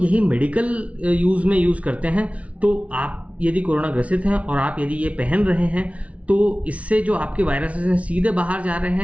मेडिकल यूज़ में यूज़ करते हैं, तो आप यदि कोरोना ग्रसित हैं और आप यदि ये पहन रहे हैं, तो इससे जो आपके वायरसेस हैं सीधे बाहर जा रहे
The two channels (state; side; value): late; left; 0.065 ms